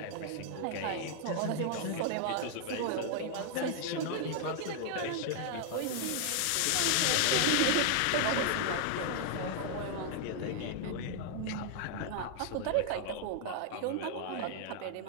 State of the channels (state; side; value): different; both; correlation 0.00